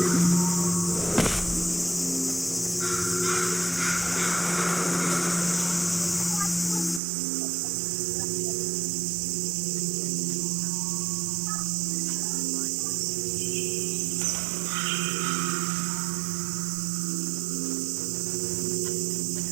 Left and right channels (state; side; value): drops out; left; at 7.0 s